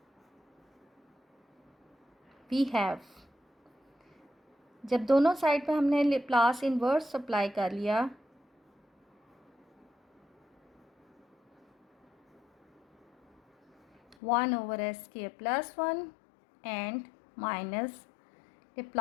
we have, जब दोनों साइड पे हमने Laplace इन्वर्स अप्लाई कर लिया, one over S K plus 1 and minus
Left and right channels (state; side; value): drops out; right; at 14.2 s